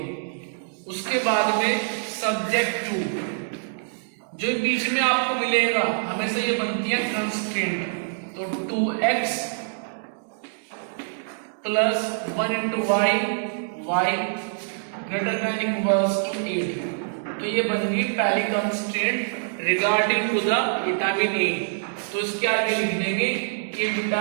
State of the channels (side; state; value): left; silent; digital silence